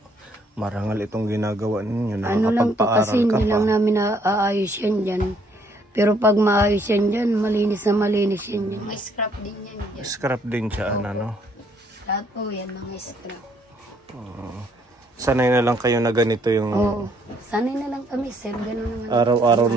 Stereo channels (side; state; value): both; normal; correlation 0.67